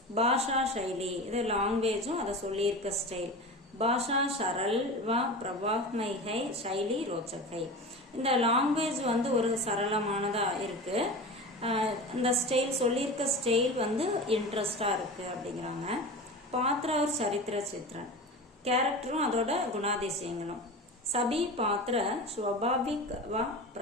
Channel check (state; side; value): normal; both; correlation 0.31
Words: பாஷா சைலி, இது லாங்குவேஜும் அதை சொல்லியிருக்க ஸ்டைல். பாஷா சரல் வ பிரபாக்மை ஹை, சைலி ரோச்சக் ஹை. இந்த லாங்குவேஜ் வந்து ஒரு சரளமானதா இருக்கு, இந்த ஸ்டைல் சொல்லியிருக்க ஸ்டைல் வந்து இன்ட்ரெஸ்டா இருக்கு அப்படிங்கிறாங்க. பாத்திர ஒரு சரித்திர சித்திரன், கேரக்டரும் அதோட குணாதிசயங்களும். சபி பாத்திர ஸ்வபாவிக் வ